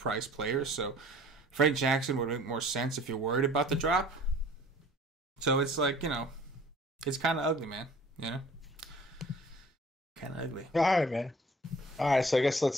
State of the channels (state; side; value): normal; both; correlation 0.50